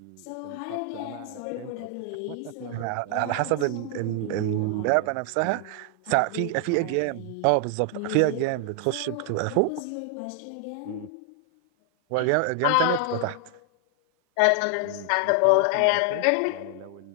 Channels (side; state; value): both; different; correlation 0.00